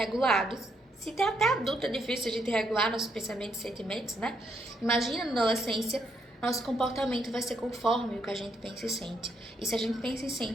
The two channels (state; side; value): normal; both; correlation 0.75